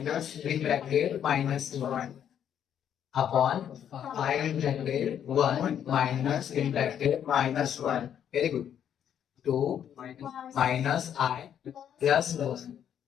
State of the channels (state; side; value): quieter; right; 9.3 dB